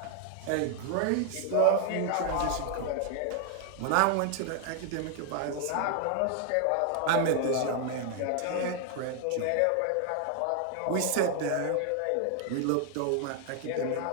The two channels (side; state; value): both; different; correlation 0.00